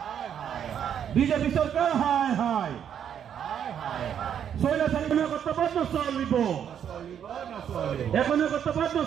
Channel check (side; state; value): left; quieter; 8.8 dB